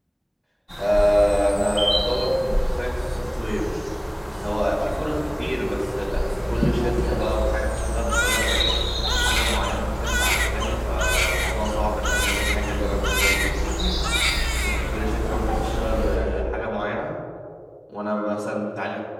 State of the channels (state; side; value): identical; both; correlation 1.00